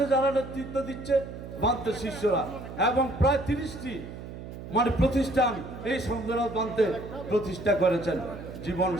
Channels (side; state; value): right; noise; hum, 11 dB below the sound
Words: যারা নেতৃত্ব দিচ্ছে বান্তের শিষ্যরা, এবং প্রায় 30টি প্রতিষ্ঠান এই সংগ্রাম বান্তে প্রতিষ্ঠা করেছেন। জীবন